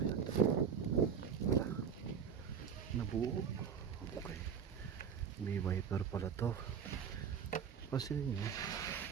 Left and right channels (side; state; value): left; quieter; 7.2 dB